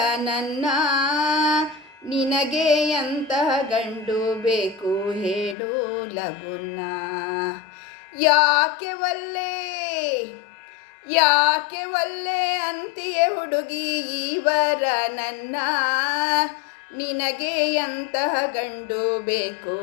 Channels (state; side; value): drops out; right; at 5.6 s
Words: ನನ್ನ, ನಿನಗೆ ಎಂತಹ ಗಂಡು ಬೇಕು ಹೇಳು ಲಗುನ. ಯಾಕೆ ಒಲ್ಲೆ ಯಾಕೆ ಒಲ್ಲೆ ಅಂತೀಯೇ ಹುಡುಗಿ ಇವರ ನನ್ನ, ನಿನಗೆ ಎಂತಹ ಗಂಡು ಬೇಕು